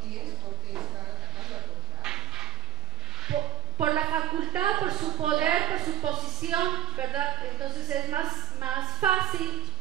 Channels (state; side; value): quieter; left; 10.4 dB